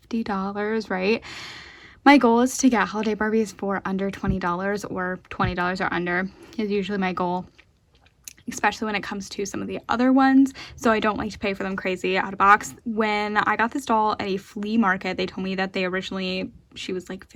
right? My goal is to get holiday Barbies for under $20, or $20 or under is usually my goal, especially when it comes to some of the other ones. So I don't like to pay for them crazy out of box. When I got this doll at a flea market, they told me that she was like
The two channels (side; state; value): both; identical; correlation 1.00